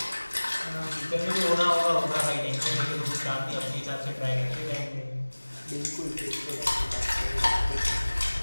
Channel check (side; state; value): both; inverted; correlation -1.00